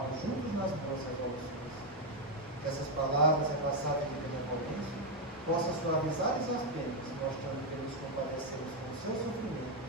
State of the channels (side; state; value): both; normal; correlation 0.03